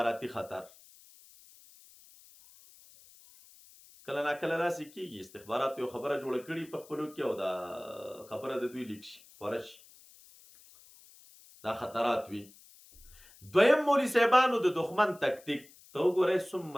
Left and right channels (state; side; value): noise; left; hiss, 24 dB below the sound